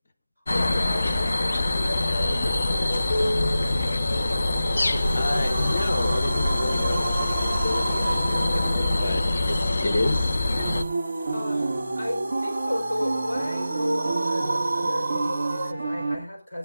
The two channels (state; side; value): inverted; both; correlation -0.93